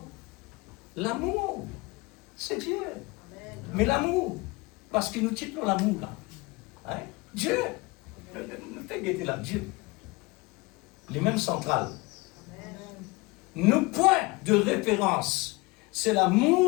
L'amour, c'est Dieu. Mais l'amour, parce qu'il nous titre l'amour là. Hein? Dieu, ne fait guetter là, Dieu. Les mêmes centrales. Nos points de référence, c'est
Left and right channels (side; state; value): right; quieter; 23.9 dB